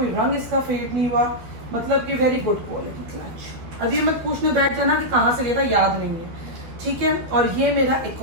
रंग इसका फेड नहीं हुआ, मतलब कि वेरी गुड क्वालिटी क्लच। अभी मत पूछने बैठ जाना कि कहाँ से लिया था, याद नहीं है, ठीक है। और ये मेरा एक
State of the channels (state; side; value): late; left; 12 ms